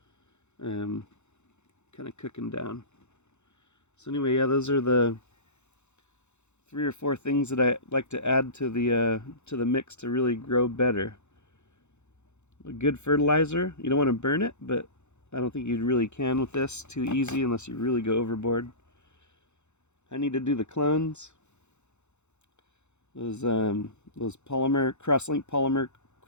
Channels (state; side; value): late; right; 0.82 ms